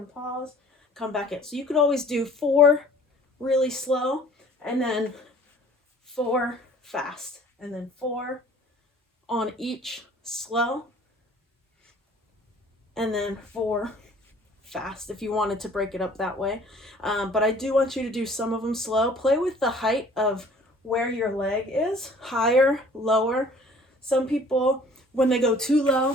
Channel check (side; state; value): both; normal; correlation 0.52